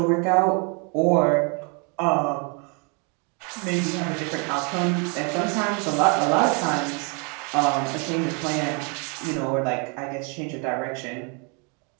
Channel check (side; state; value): left; quieter; 34.8 dB